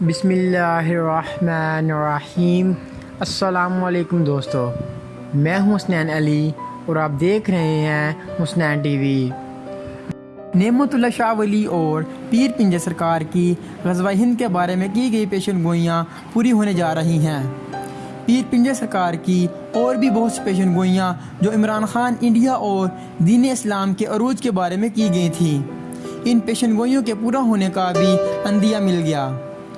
بسم اللہ الرحمن الرحیم۔ السلام علیکم دوستو، میں ہوں حسنین علی اور آپ دیکھ رہے ہیں حسنین ٹی وی۔ نعمت اللہ شاہ ولی اور پیر پنجر سرکار کی غزوہ ہند کے بارے میں کی گئی پیشن گوئیاں پوری ہونے جا رہی ہیں۔ پیر پنجر سرکار کی اور بھی بہت سی پیشن گوئیاں جو عمران خان انڈیا اور دین اسلام کے عروج کے بارے میں کی گئی تھیں، ان پیشن گوئیوں کے پورا ہونے کا بھی عندیہ مل گیا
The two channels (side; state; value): both; identical; correlation 1.00